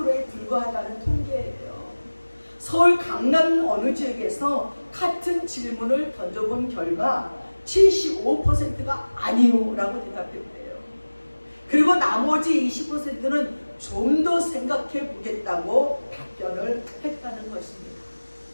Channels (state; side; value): inverted; both; correlation -1.00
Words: 불과하다는 통계예요. 서울 강남 어느 지역에서 같은 질문을 던져본 결과 75%가 아니요 라고 대답했대요. 그리고 나머지 20%는 좀 더 생각해 보겠다고 답변을 했다는 것입니다.